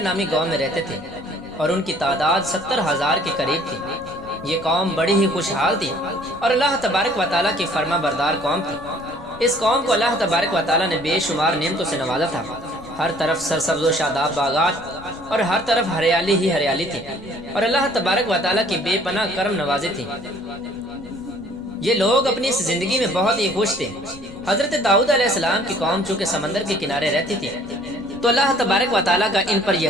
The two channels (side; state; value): left; noise; rumble, 20 dB below the sound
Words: گاؤں میں رہتے تھے، اور ان کی تعداد 70,000 کے قریب تھی۔ یہ قوم بڑی ہی خوشحال تھی اور اللہ تبارک و تعالیٰ کی فرما بردار قوم تھی۔ اس قوم کو اللہ تبارک و تعالیٰ نے بے شمار نعمتوں سے نوازا تھا۔ ہر طرف سرسبز و شاداب باغات اور ہر طرف ہریالی ہی ہریالی تھی، اور اللہ تبارک و تعالیٰ کی بے پناہ کرم نوازی تھی۔ یہ لوگ اپنی اس زندگی میں بہت ہی خوش تھے۔ حضرت داؤد علیہ السلام کی قوم چونکہ سمندر کے کنارے رہتی تھی تو اللہ تبارک و تعالیٰ کا ان پر یہ